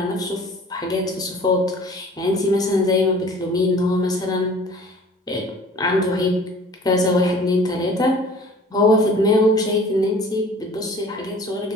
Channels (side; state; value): both; normal; correlation 0.48